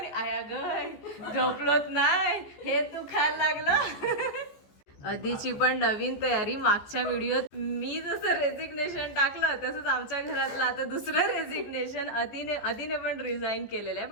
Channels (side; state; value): right; late; 14 ms